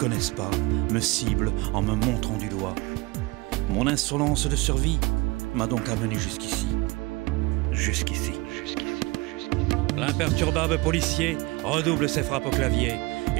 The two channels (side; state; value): left; quieter; 24.0 dB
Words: pas me ciblent en me montrant du doigt. Mon insolence de survie m'a donc amené jusqu'ici. Jusqu'ici. L'imperturbable policier redouble ses frappes au clavier.